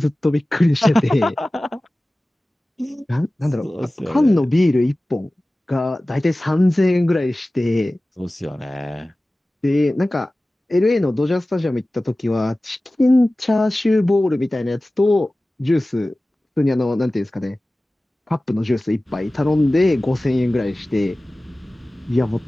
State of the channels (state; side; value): normal; both; correlation 0.97